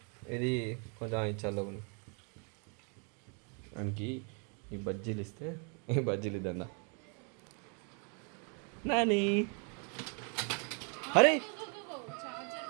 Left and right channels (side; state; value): left; quieter; 37.9 dB